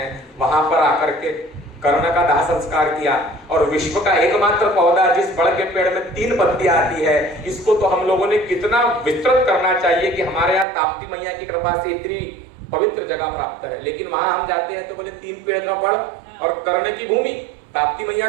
वहां पर आकर के कर्ण का दाह संस्कार किया। और विश्व का एकमात्र पौधा जिस बड़ के पेड़ में 3 पत्तियां आती है, इसको तो हम लोगों ने कितना विस्तृत करना चाहिए कि हमारे यहाँ ताप्ती मैया की कृपा से इतनी पवित्र जगह प्राप्त है। लेकिन वहां हम जाते हैं तो बोले 3 पेड़ का बड़ और कर्ण की भूमि, ताप्ती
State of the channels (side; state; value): left; drops out; at 10.7 s